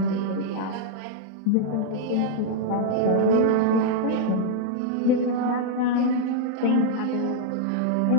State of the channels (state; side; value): different; both; correlation -0.01